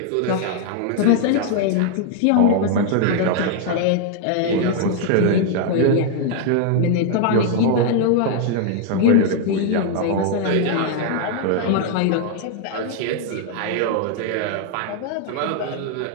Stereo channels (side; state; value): both; different; correlation 0.00